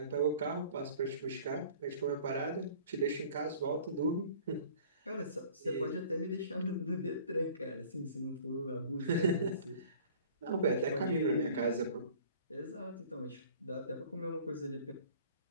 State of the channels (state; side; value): inverted; both; correlation -0.49